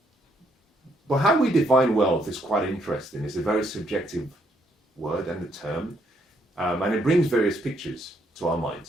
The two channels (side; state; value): both; normal; correlation 0.72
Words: But how we define wealth is quite interesting. It's a very subjective word and the term, and it brings various pictures to our